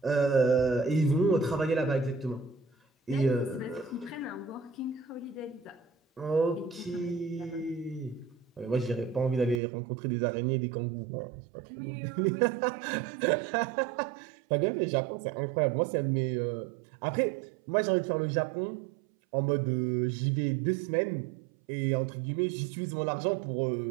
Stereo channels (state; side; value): drops out; left; at 9.6 s